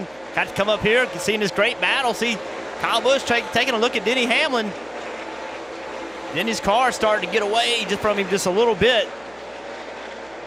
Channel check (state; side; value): noise; right; hum, 30 dB below the sound